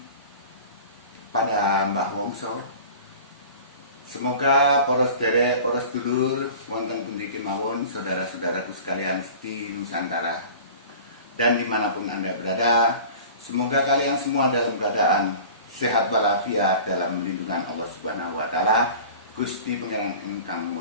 pada Mbah Wongso. Semoga poros derek, poros dulur, wonten pundi kemawon, saudara-saudaraku sekalian di Nusantara dan dimanapun Anda berada, semoga kalian semua dalam keadaan sehat walafiat dalam lindungan Allah Subhanahu wa taala, Gusti Pangeran ingkang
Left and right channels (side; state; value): both; inverted; correlation -0.41